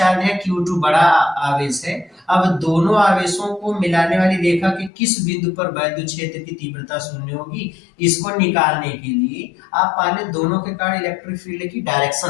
है, Q2 बड़ा आवेश है। अब दोनों आवेशों को मिलाने वाली रेखा के किस बिंदु पर वैद्युत क्षेत्र की तीव्रता शून्य होगी, इसको निकालने के लिए आप पहले दोनों के कारण इलेक्ट्रिक फील्ड की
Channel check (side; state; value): right; drops out; at 4.9 s